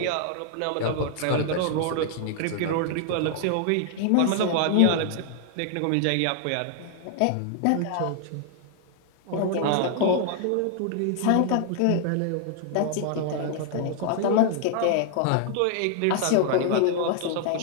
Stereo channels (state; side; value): different; both; correlation 0.00